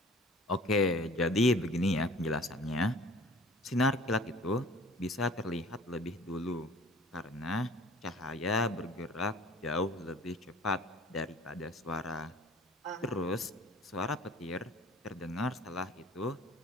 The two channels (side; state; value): both; normal; correlation 0.48